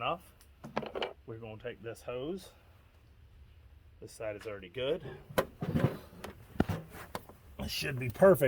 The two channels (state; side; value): identical; both; correlation 1.00